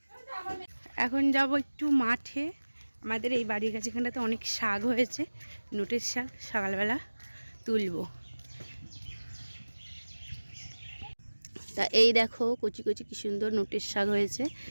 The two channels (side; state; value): both; inverted; correlation -1.00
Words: এখন যাব একটু মাঠে। আমাদের এই বাড়ির কাছে এখানটাতে অনেক শাক হয়েছে, নোটের শাক। সকালবেলা তুলবো। তা এই দেখো কচি কচি কি সুন্দর নোটের শাক হয়েছে,